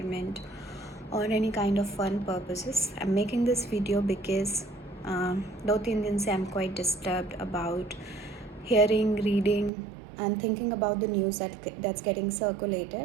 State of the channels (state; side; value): drops out; left; at 9.7 s